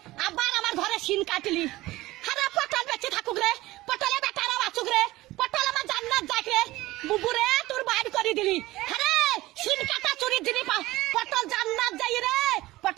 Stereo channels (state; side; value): quieter; left; 18.1 dB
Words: আবার আমার ঘরে সিন কাটলি হারা পটল বেঁচে থাকুক রে পটলে বেটারা বাঁচুক রে পটল আমার জান্নাত যাক রে বুবুরে তোর বাইর করে দিলি আরে সিন কাটা চুরির জিনিস পটল জান্নাত যাই রে